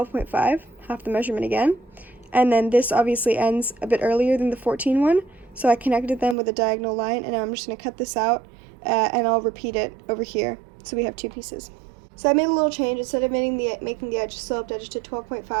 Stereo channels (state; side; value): drops out; left; at 6.4 s